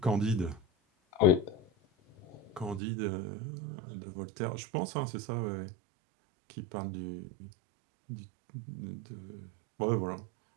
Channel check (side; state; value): left; drops out; at 2.8 s